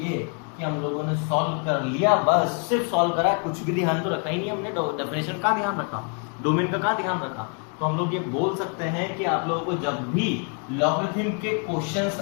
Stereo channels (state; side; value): quieter; right; 39.4 dB